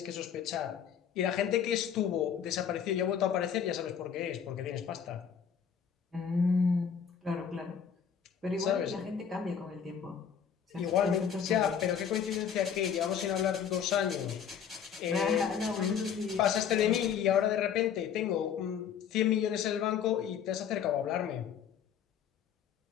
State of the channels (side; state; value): right; quieter; 7.9 dB